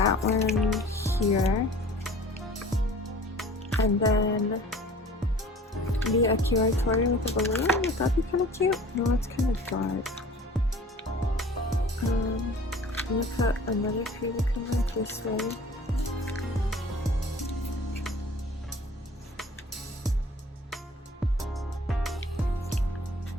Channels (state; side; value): normal; both; correlation 0.46